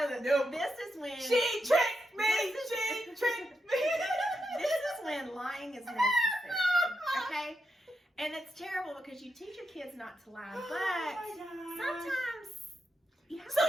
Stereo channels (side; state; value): both; normal; correlation 0.85